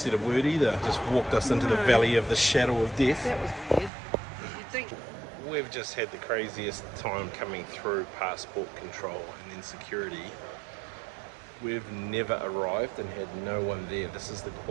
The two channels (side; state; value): left; drops out; at 3.9 s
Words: a word either. Just walked us into the valley of the shadow of death. That was weird. You'd think. We've just had the craziest time coming through passport control and then security. We've never arrived and had no one there. This is the